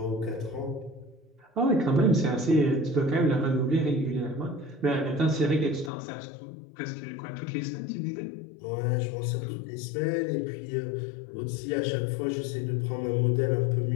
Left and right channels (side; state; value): right; drops out; at 5.9 s